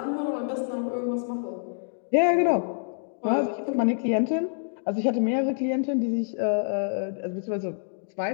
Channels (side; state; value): right; silent; digital silence